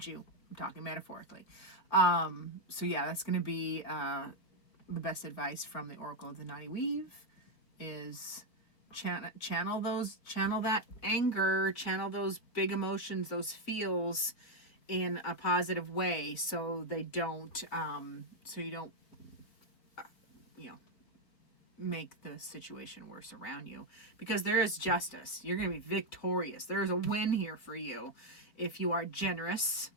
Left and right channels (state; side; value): late; right; 4.3 ms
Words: you. I'm talking metaphorically. So yeah, that's going to be the best advice from the Oracle of the Knotty Weave is channel that anger, channel those big emotions, those feels in a positive way, so you don't make the situation worse around you, because there is justice. You're going to be victorious. There is a win here for you if you are generous.